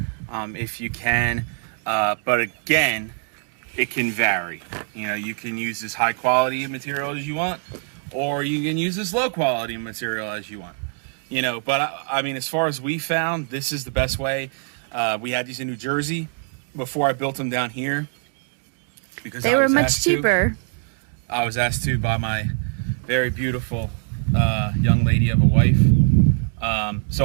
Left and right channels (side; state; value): left; silent; 59 dB below the other